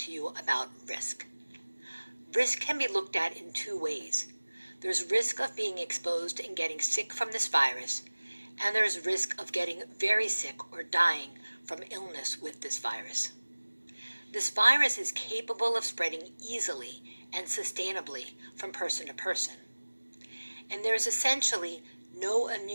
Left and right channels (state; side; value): inverted; both; correlation -1.00